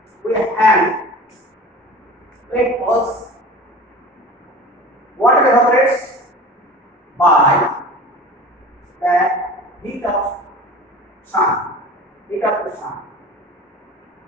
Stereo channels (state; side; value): normal; both; correlation 0.38